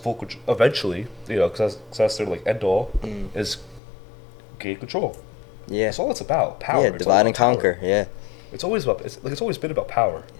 control eventually. Because that's their like end all is gain control. Yeah. That's all it's about. Power. Yeah, It's all divide and about power. conquer. Yeah. It's always about. It's always been about power.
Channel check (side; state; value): right; drops out; at 3.8 s